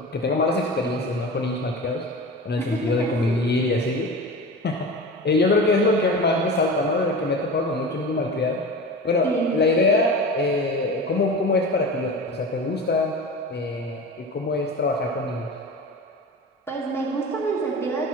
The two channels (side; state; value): both; normal; correlation 0.31